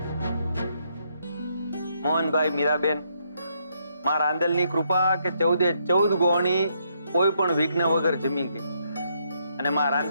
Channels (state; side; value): inverted; both; correlation -0.75